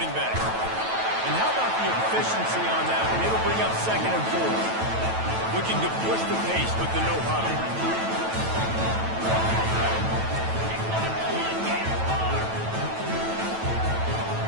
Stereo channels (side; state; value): left; late; 9.1 ms